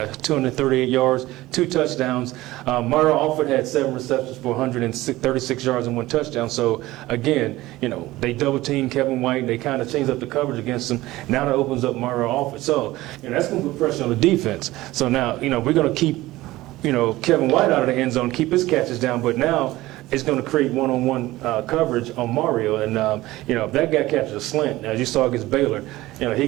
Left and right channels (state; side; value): quieter; left; 17.7 dB